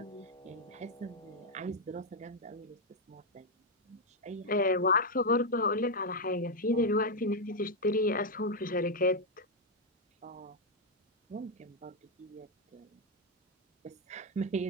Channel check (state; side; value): normal; both; correlation 0.01